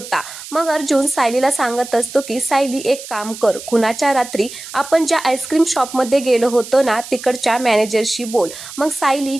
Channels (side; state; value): right; noise; hiss, 13 dB below the sound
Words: मग अर्जुन सायलीला सांगत असतो की सायली एक काम कर, खुनाच्या रात्री आपण ज्या आईस्क्रीम शॉपमध्ये गेलो होतो ना तिकडच्या मॅनेजरशी बोल. मग सायली,